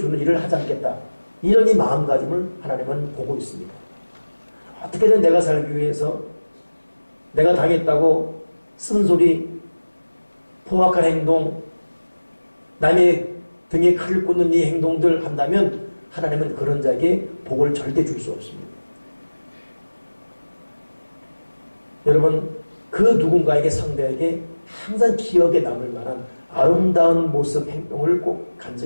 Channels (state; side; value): inverted; both; correlation -1.00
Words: 일을 하지 않겠다. 이런 이 마음가짐을 하나님은 보고 있습니다. 어떻게든 내가 살기 위해서 내가 당했다고 쓴소리, 포악한 행동, 남의 등에 칼을 꽂는 이 행동들 한다면 하나님은 그런 자에게 복을 절대 줄 수 없습니다. 여러분 그 누군가에게 상대에게 항상 기억에 남을 만한 아름다운 모습, 행동을 꼭